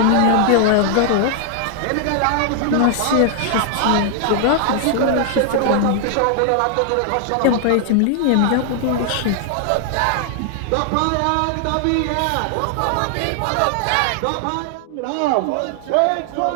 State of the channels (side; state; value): both; different; correlation 0.00